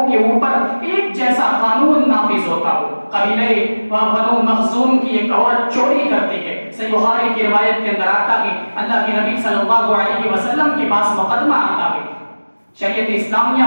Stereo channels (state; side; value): inverted; both; correlation -1.00